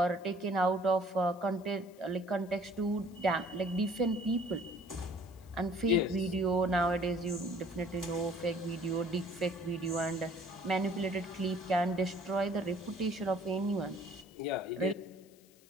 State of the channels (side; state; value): left; noise; hiss, 28 dB below the sound